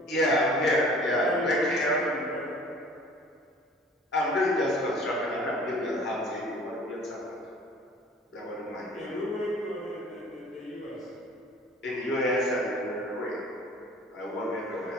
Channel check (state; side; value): normal; both; correlation 0.49